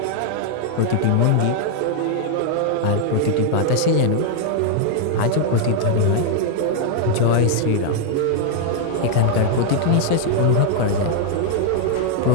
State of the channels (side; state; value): both; different; correlation 0.00